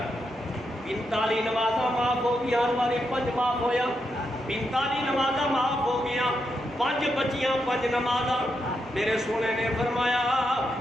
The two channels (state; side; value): normal; both; correlation 0.83